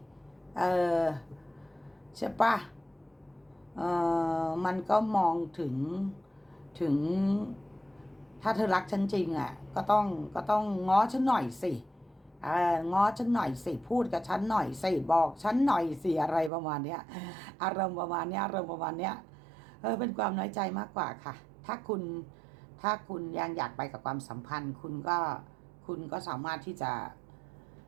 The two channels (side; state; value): left; drops out; at 16.5 s